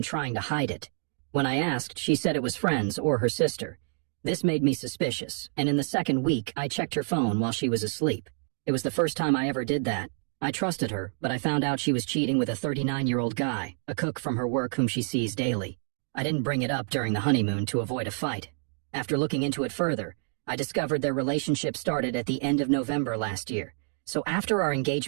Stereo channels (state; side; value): silent; left; 59 dB below the other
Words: trying to hide it. When I asked, she said it was friends or her sister. This made me suspicious, and in the second week, I checked her phone while she was asleep. It was the first time I ever did that. I trusted her, but I found out she was cheating with a 39-year-old guy, a cook from her work whom she sees daily. I didn't bring it up during the honeymoon to avoid a fight. After looking into it further, I discovered their relationship started at the end of November last year, so after our